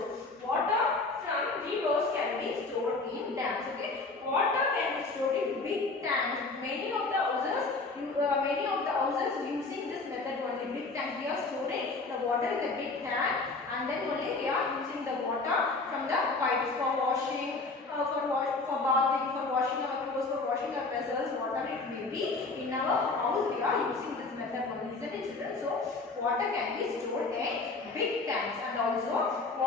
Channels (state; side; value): quieter; right; 3.7 dB